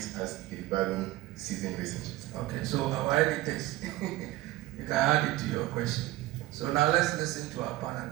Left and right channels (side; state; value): left; quieter; 17.3 dB